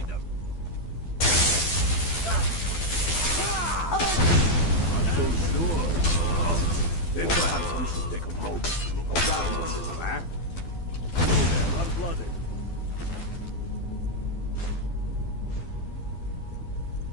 them. Not so sure. Then perhaps we should take a moment to look around a little, huh? You there, unblooded.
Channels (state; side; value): late; right; 12 ms